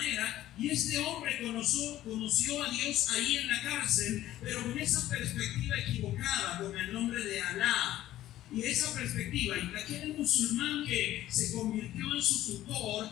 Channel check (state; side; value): quieter; right; 14.0 dB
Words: y este hombre conoció a Dios ahí en la cárcel, pero con esa perspectiva equivocada, con el nombre de Alá. Y esa perspectiva, y aquel musulmán que se convirtió en su tutor,